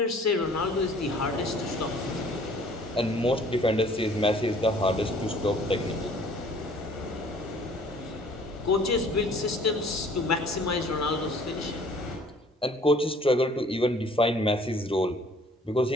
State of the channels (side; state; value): both; normal; correlation 0.55